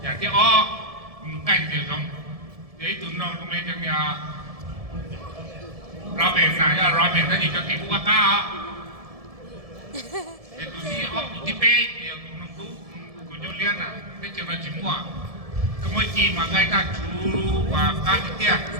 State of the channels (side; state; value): left; late; 1.7 ms